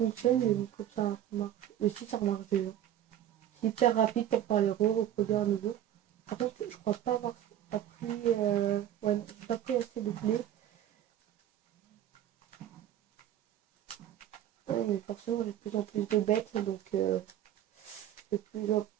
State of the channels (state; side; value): quieter; left; 11.4 dB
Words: mais comme ça marche. Aussi ça marche déjà. C'est hyper rapide pour faire les reproduire à nouveau. Par contre, je crois pas avoir appris... ouais, j'ai pas pris assez de blé. Ouais, mais forcément, j'ai de plus en plus de bêtes, donc j'ai de